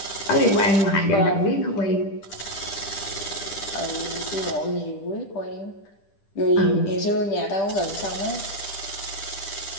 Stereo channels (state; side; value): late; right; 10 ms